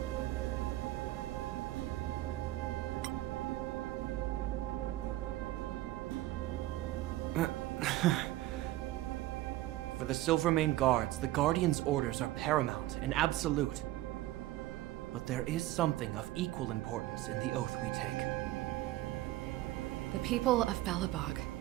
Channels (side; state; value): left; quieter; 16.2 dB